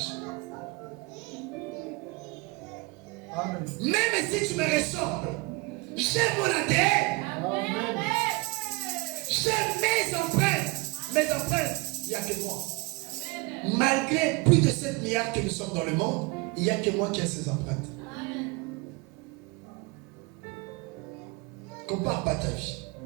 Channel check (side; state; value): left; quieter; 25.1 dB